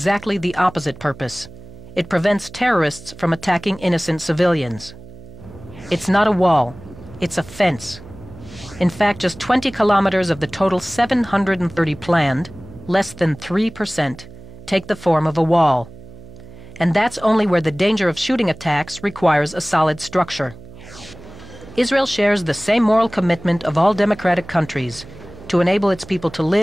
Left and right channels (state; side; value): noise; right; hum, 18 dB below the sound